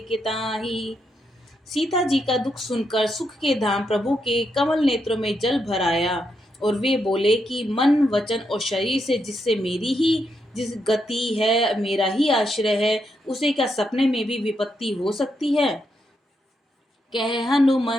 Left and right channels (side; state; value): both; normal; correlation 0.81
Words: के ताहि। सीता जी का दुख सुनकर सुख के धाम प्रभु के कमल नेत्रों में जल भर आया और वे बोले कि मन वचन और शरीर से जिससे मेरी ही जिस गति है, मेरा ही आश्रय है, उसे क्या सपने में भी विपत्ति हो सकती है। कह